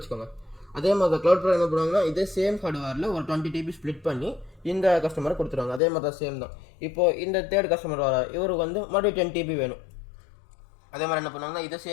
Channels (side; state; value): right; drops out; at 5.8 s